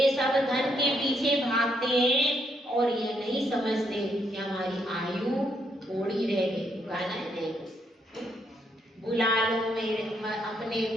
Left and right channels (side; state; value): both; normal; correlation 0.74